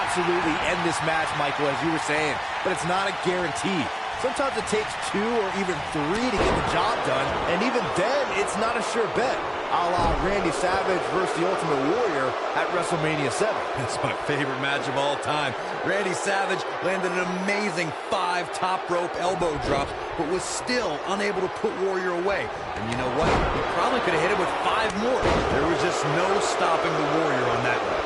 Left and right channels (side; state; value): both; identical; correlation 1.00